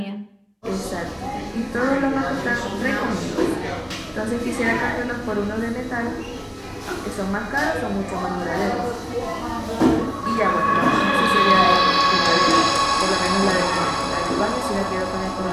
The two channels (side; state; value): both; identical; correlation 1.00